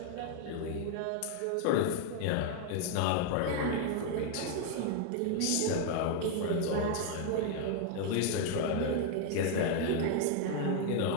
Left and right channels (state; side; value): different; both; correlation 0.00